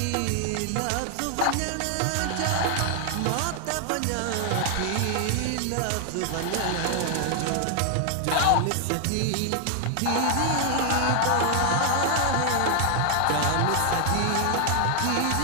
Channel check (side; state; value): both; different; correlation 0.00